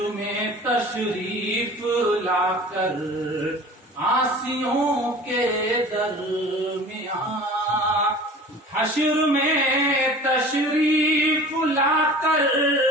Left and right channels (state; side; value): normal; both; correlation 0.42